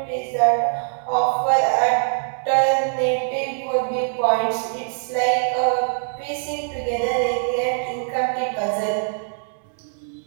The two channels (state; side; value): silent; left; digital silence